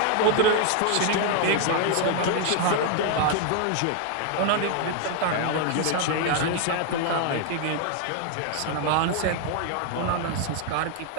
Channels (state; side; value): different; both; correlation 0.00